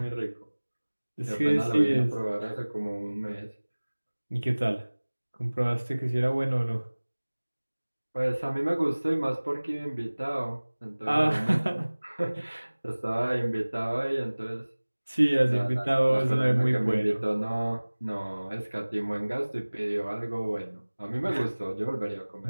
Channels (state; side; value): inverted; both; correlation -1.00